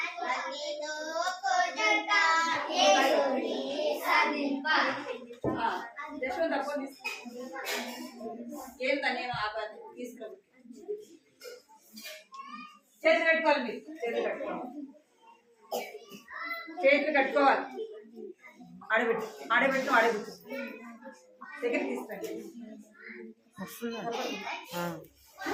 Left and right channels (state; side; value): identical; both; correlation 1.00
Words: ఏంటనే తీసుకురా. చేతులు కట్టుకోవాలి, మీరు చేతులు కట్టుకోవాలి, చేతులు కట్టుకోవాలి. ఆడబెట్టు, ఆడబెట్టు, ఆడబెట్టు. దగ్గర తీసుకురండి.